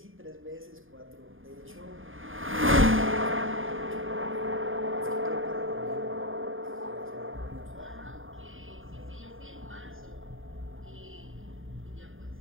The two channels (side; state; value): left; late; 0.59 ms